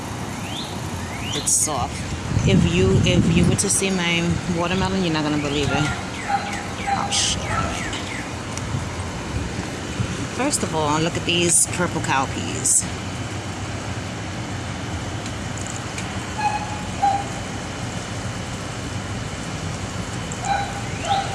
it's soft. If you were to see my watermelon, you're not gonna believe it. Oh shit. First of all, look at these purple cowpeas.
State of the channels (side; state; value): both; identical; correlation 1.00